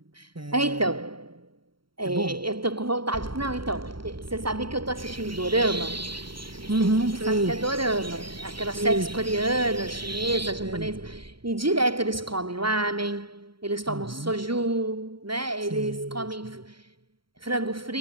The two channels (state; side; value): late; left; 0.74 ms